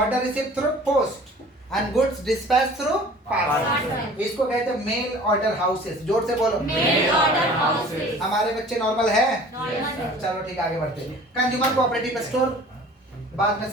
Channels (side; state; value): both; normal; correlation 0.46